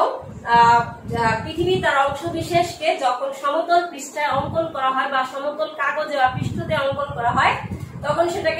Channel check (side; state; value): both; identical; correlation 1.00